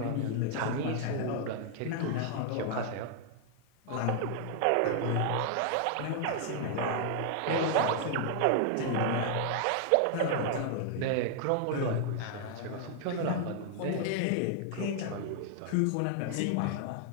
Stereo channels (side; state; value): both; different; correlation 0.00